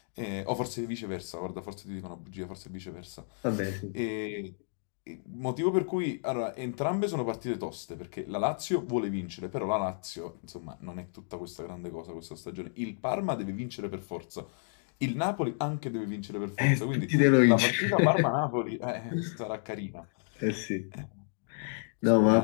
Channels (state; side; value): silent; right; digital silence